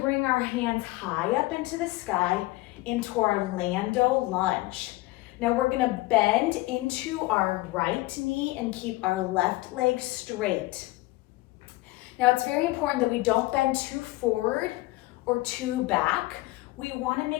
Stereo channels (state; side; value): quieter; right; 19.7 dB